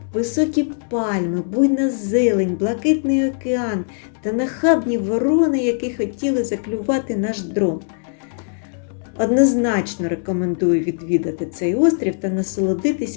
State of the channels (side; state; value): right; silent; digital silence